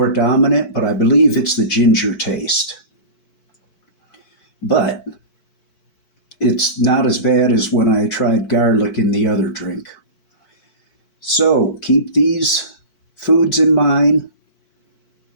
dominant, but I believe it's the ginger taste. But it's not as bad as when I tried garlic in the other drink. So keep these foods in mind:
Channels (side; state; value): right; late; 4.5 ms